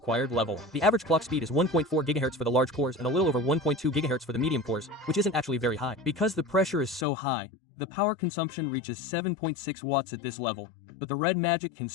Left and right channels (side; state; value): right; drops out; at 7.1 s